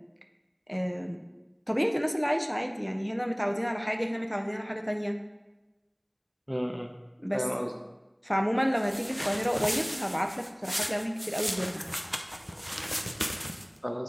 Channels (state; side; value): identical; both; correlation 1.00